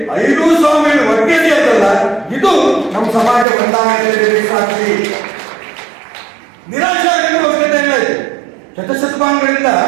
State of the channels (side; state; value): left; drops out; at 3.5 s